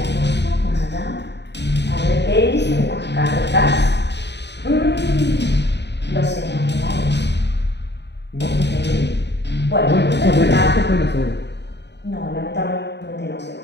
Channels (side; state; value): right; late; 0.50 ms